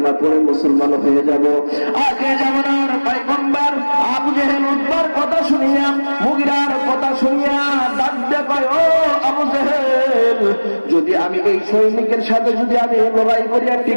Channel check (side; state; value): both; inverted; correlation -1.00